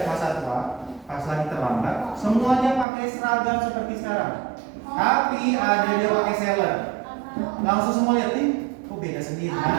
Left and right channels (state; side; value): drops out; left; at 2.9 s